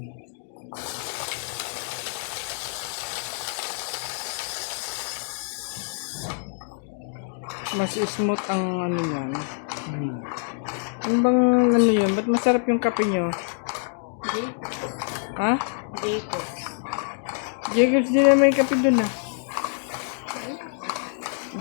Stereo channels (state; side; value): silent; right; digital silence